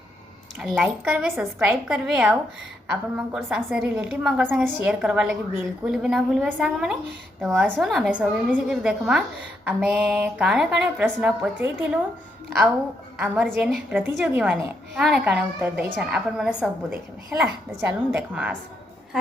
लाइक करवे सब्सक्राइब करवे आउ आपण मंकर संग रिलेटिव मंकर संग शेयर करवा लगे बिल्कुल भी ना भूलवे सांग मैंने तो आसुन आमे सब मिसिक देखमा आमे काणे काणे प्रश्न पचईथिलु आउ आमर जेन प्रतियोगी माने काणे काणे उत्तर देछन आपण माने सब देखबे हैला तो चलून देखमा आस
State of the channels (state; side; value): normal; both; correlation 0.78